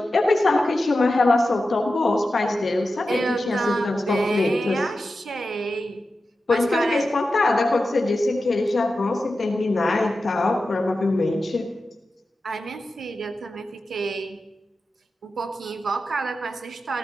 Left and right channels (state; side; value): normal; both; correlation 0.92